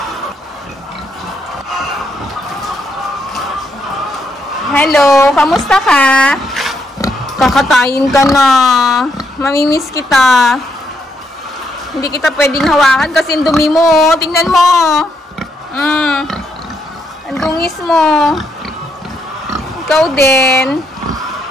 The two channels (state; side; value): normal; both; correlation 0.77